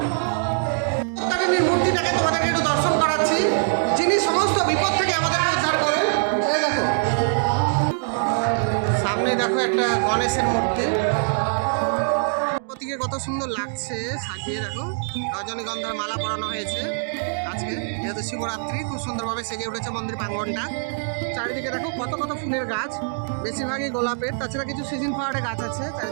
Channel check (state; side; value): silent; left; digital silence